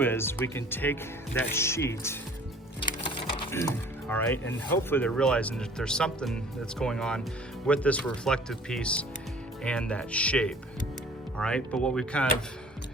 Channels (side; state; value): both; normal; correlation 0.50